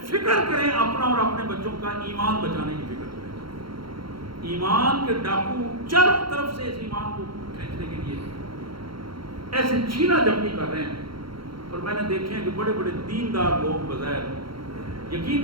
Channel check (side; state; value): left; late; 0.73 ms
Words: فکر کریں اپنا اور اپنے بچوں کا ایمان بچانے کی فکر کریں. ایمان کے ڈاکو چاروں طرف سے اس ایمان کو کھینچنے کے لیے ایسے چھینا جھپٹی کر رہے ہیں. اور میں نے دیکھے ہیں کہ بڑے بڑے دیندار لوگ بظاہر,